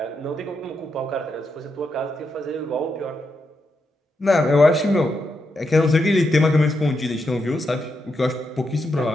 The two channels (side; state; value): both; normal; correlation 0.83